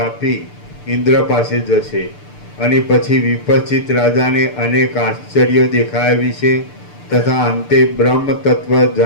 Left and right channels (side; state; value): right; late; 6.8 ms